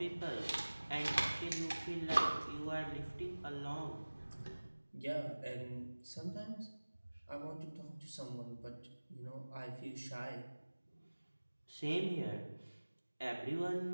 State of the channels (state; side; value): inverted; both; correlation -1.00